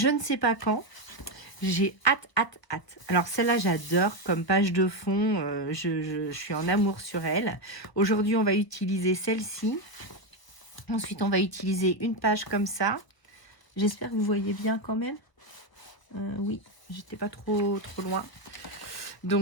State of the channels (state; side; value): late; right; 1.1 ms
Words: ne sais pas quand. J'ai hâte, hâte, hâte. Alors celle-là, j'adore comme page de fond. Je suis en amour sur elle. Aujourd'hui, on va utiliser celle-ci. Ensuite, on va utiliser une page comme ça. J'espère que vous voyez bien quand même. Oui, j'étais pas trop loin.